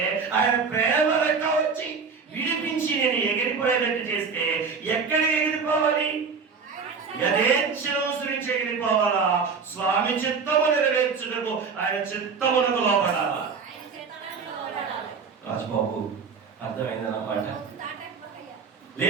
ఆయన ప్రేమ రెక్క వచ్చి విడిపించి నేను ఎగిరిపోయేటట్టు చేస్తే ఎక్కడికి ఎగిరిపోవాలి? యథేచ్ఛను అనుసరించి ఎగిరిపోవాలా? స్వామి చిత్తము నెరవేర్చుటకు ఆయన చిత్తమునకు లోబడాలా? రాజబాబు అర్థమైందన్నమాట.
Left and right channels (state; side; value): quieter; left; 5.4 dB